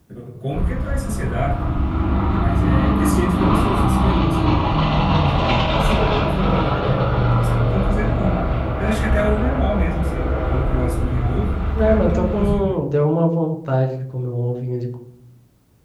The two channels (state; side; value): identical; both; correlation 1.00